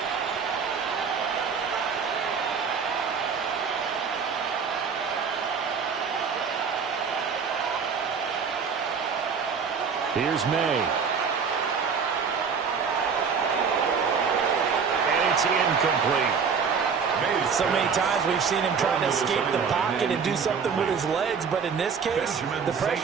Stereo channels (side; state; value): left; quieter; 6.0 dB